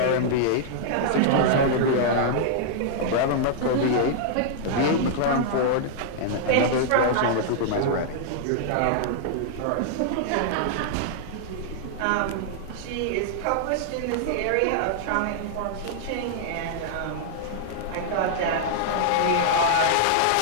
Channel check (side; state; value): both; different; correlation -0.01